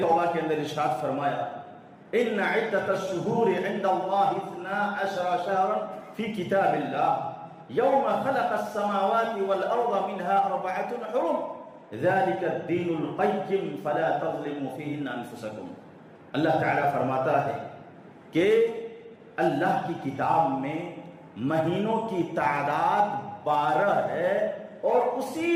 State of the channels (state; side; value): identical; both; correlation 1.00